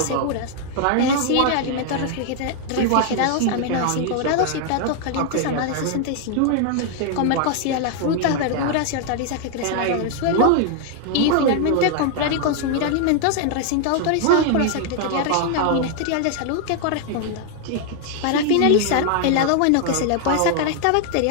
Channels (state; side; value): different; both; correlation 0.00